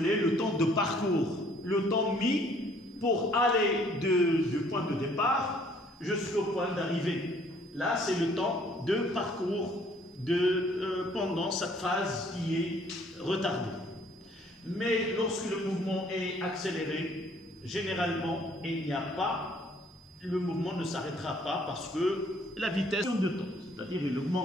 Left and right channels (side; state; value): both; normal; correlation 0.61